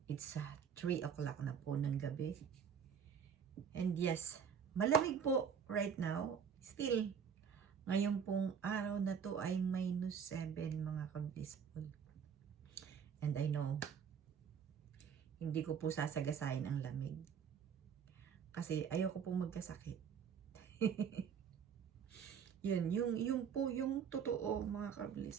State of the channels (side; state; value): left; quieter; 7.2 dB